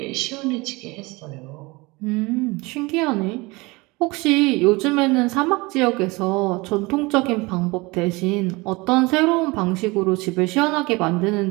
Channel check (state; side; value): quieter; left; 24.1 dB